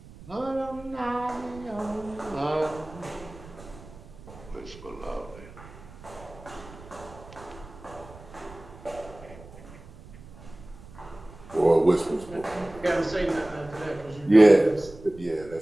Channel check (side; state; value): right; noise; rumble, 19 dB below the sound